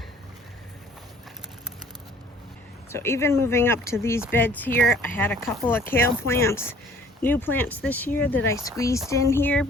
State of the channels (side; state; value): both; normal; correlation 0.54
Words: So even moving up to these beds here, I had a couple of kale plants, new plants this year that I squeezed in here